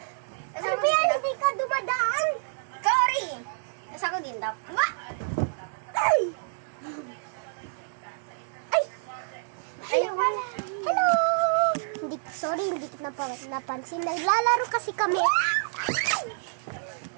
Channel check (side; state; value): left; silent; digital silence